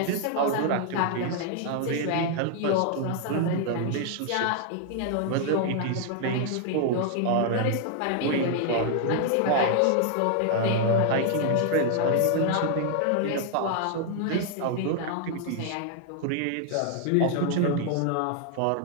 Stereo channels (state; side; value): different; both; correlation 0.00